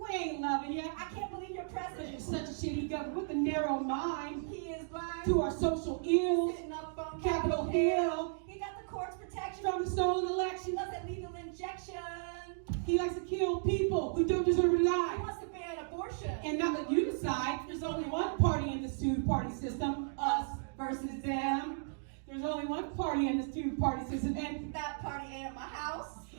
ain't loving you. I can't believe you're Because president. you're such a shitty government with a narrow mind. He is blind. To our social ills. Sitting up on Capitol Hill. He got the court's protection From the stolen She election. loves that legal injection. He likes to kill people who don't deserve to He die. wants to ban abortion. And not let you decide. There's only one party in this two-party system. Us versus them. There's only one party in this two-party system. And That party ain't at my house.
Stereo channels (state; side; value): silent; left; digital silence